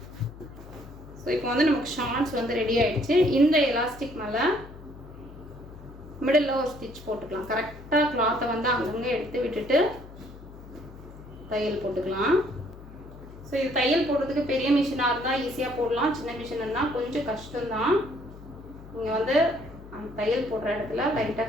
ஸோ இப்போ வந்து நமக்கு ஷார்ட்ஸ் வந்து ரெடி ஆகிடுச்சு. இந்த எலாஸ்டிக் மேலே மிடில் ஒரு ஸ்டிச் போட்டுக்கலாம். கரெக்டாக கிளாத்தை வந்து அங்கங்கே எடுத்து விட்டுட்டு தையல் போட்டுக்கலாம். ஸோ இது தையல் போடுறதுக்கு பெரிய மிஷினாக இருந்தால் ஈஸியாக போடலாம், சின்ன மிஷின் இருந்தால் கொஞ்சம் கஷ்டம்தான். நீங்கள் வந்து அந்த தையல் போடுற இடத்துல லைட்டாக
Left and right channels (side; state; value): left; noise; hum, 17 dB below the sound